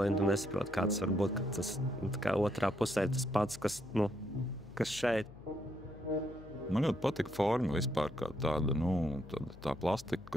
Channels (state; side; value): noise; left; hum, 18 dB below the sound